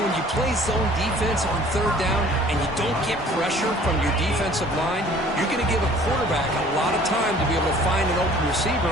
when you play zone defense on third down and you don't get pressure from your defensive line, you're going to give a quarterback a lot of time to be able to find an open receiver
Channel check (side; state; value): both; normal; correlation 0.52